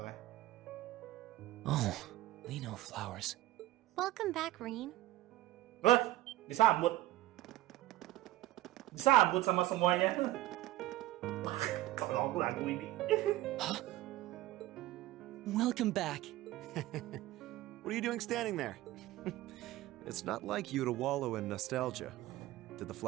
Oh, Leno flowers. Welcome back, Rin. Wah, disambut sama semuanya. Kalau aku lagu ini. Huh? Welcome back. What are you doing standing there? It's not like you to wallow in nostalgia. Did the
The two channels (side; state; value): left; quieter; 15.8 dB